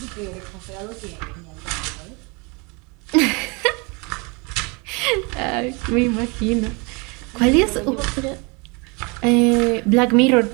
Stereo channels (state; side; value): quieter; left; 29.9 dB